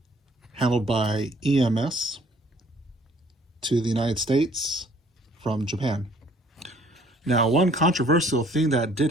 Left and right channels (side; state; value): both; normal; correlation 0.59